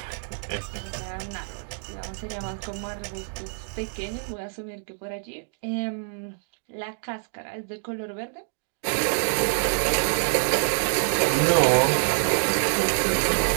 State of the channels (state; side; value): silent; left; digital silence